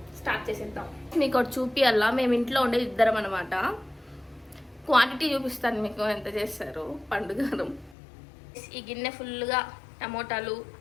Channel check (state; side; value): drops out; right; at 8.0 s